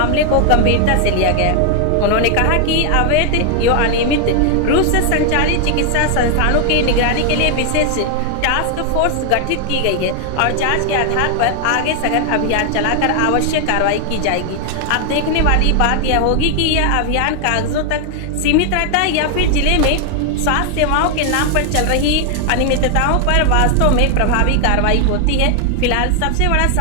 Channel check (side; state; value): both; different; correlation 0.00